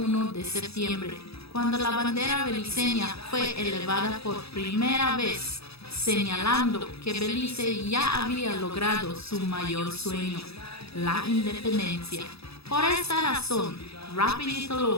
de septiembre, cuando la bandera beliceña fue elevada por primera vez, señalando que Belice ya había logrado su mayor sueño, la independencia. Por esta razón, Rapidito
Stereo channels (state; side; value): late; right; 0.78 ms